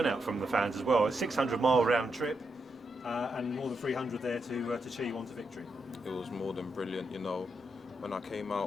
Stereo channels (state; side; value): normal; both; correlation 0.82